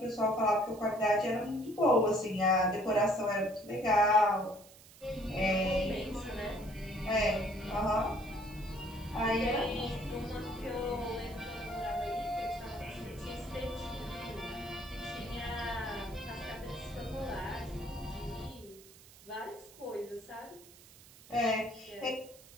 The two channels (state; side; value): noise; right; hiss, 22 dB below the sound